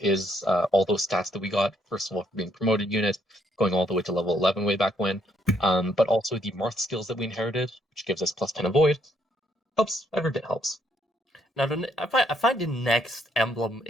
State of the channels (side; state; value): both; normal; correlation 0.71